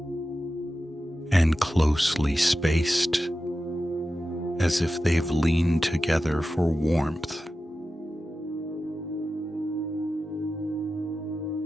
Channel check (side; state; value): both; normal; correlation 0.92